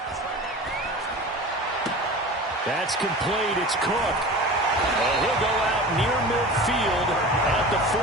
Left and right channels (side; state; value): both; normal; correlation 0.35